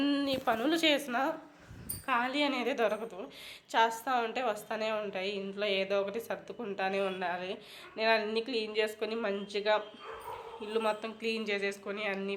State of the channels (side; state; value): both; identical; correlation 1.00